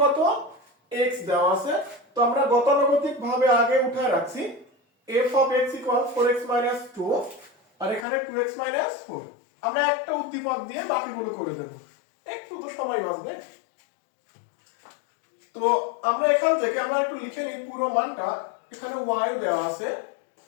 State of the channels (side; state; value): right; drops out; at 8.1 s